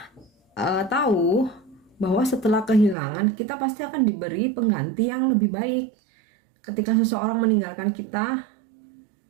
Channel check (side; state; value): left; drops out; at 3.0 s